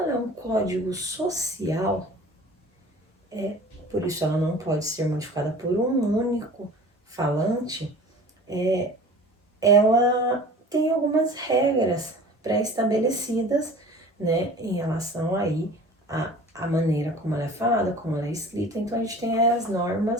é um código social, por isso ela não pode ser modificada por um único falante, ela tem algumas regras pré-estabelecidas, né, em relação aí a maneira como ela é falada, como ela é escrita. Então a gente tem as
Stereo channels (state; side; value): normal; both; correlation 0.42